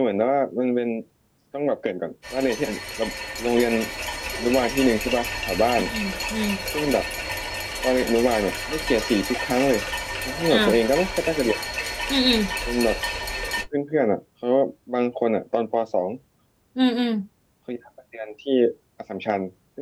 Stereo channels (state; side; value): identical; both; correlation 1.00